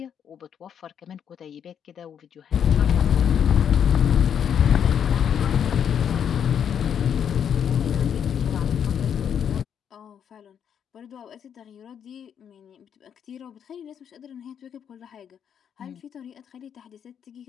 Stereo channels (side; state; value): right; quieter; 8.3 dB